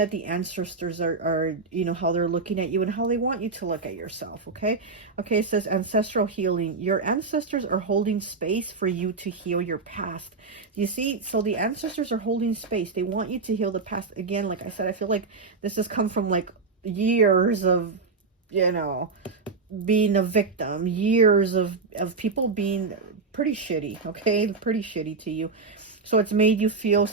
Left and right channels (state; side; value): quieter; left; 4.3 dB